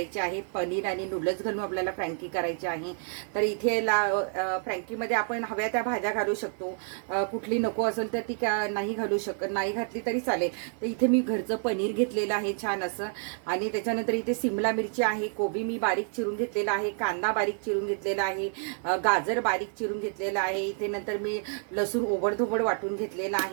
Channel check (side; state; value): left; silent; 59 dB below the other